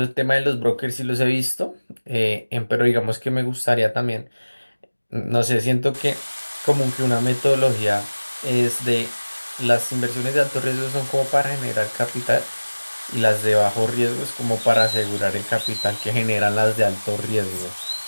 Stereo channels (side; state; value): both; inverted; correlation -1.00